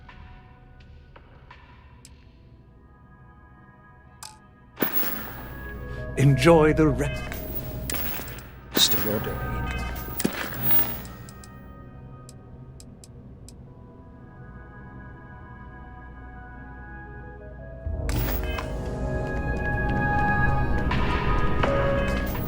Enjoy the rest of your day.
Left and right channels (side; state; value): both; identical; correlation 1.00